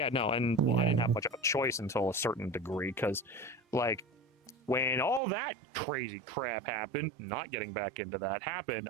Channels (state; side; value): drops out; left; at 5.2 s